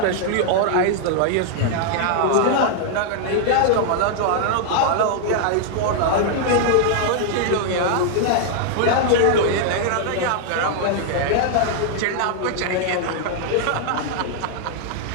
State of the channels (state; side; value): different; both; correlation -0.01